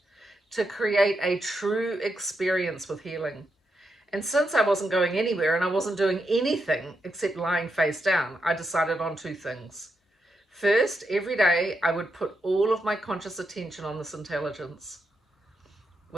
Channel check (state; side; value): normal; both; correlation 0.84